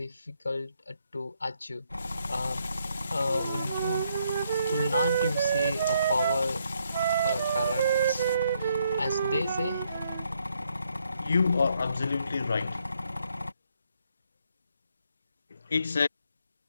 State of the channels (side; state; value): both; inverted; correlation -0.74